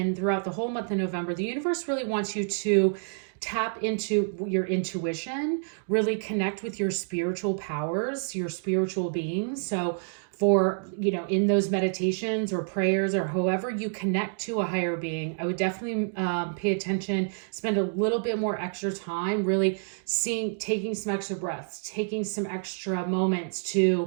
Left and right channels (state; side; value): silent; left; digital silence